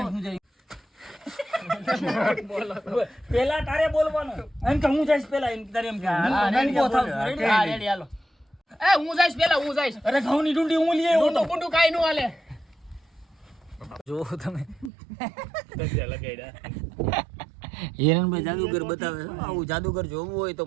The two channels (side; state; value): left; drops out; at 14.9 s